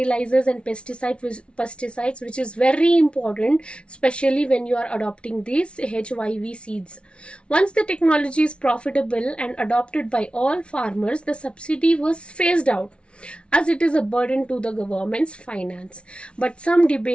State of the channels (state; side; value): late; right; 0.059 ms